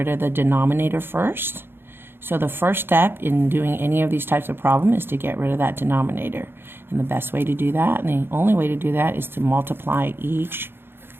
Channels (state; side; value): late; left; 0.11 ms